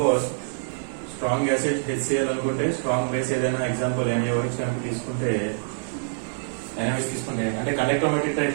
strong acid HCl అనుకుంటే strong base ఏదైనా example NaOH కనుక తీసుకుంటే NaOH తీసుకుంటే అంటే conductometric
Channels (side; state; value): left; silent; 58 dB below the other